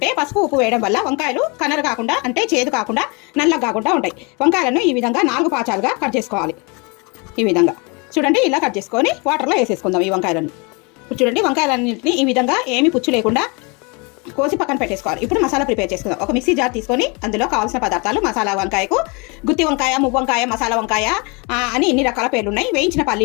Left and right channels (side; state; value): right; quieter; 30.4 dB